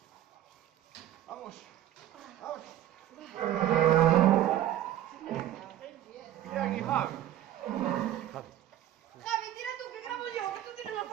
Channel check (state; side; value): quieter; left; 12.4 dB